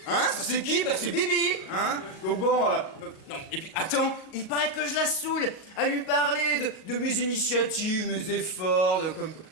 Hein? Ça c'est qui? Bah c'est Bibi! Hein? Donc bon, non, et puis attends, il paraît que je la saoule à lui parler de mes initiatives, mes efforts, de comme...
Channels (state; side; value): late; right; 40 ms